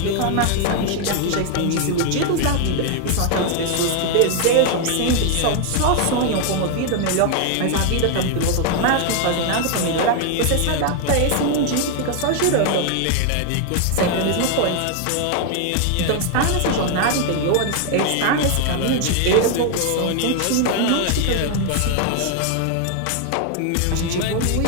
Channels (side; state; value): both; different; correlation 0.00